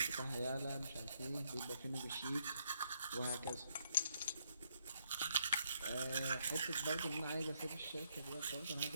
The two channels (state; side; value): inverted; both; correlation -0.72